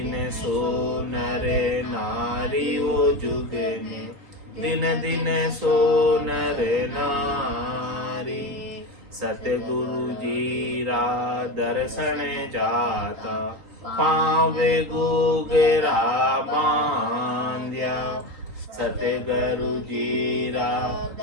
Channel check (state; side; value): late; left; 3.9 ms